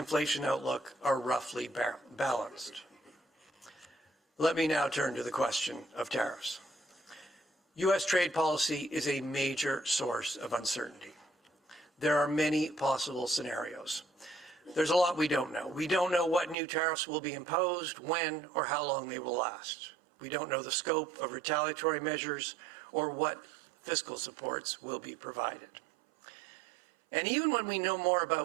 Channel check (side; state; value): left; drops out; at 16.6 s